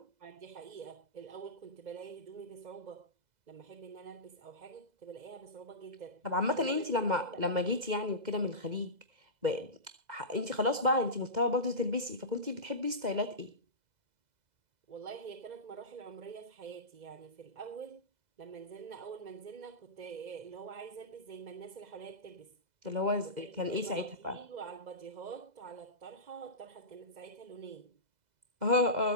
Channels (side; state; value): left; late; 2.0 ms